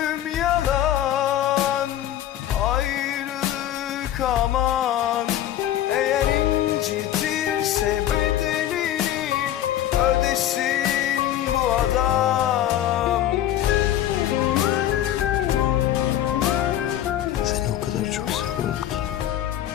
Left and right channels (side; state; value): right; quieter; 12.0 dB